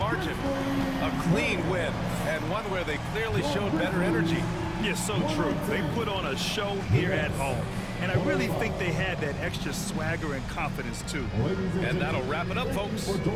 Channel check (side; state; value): both; identical; correlation 1.00